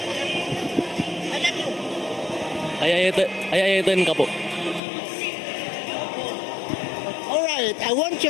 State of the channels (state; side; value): drops out; right; at 4.8 s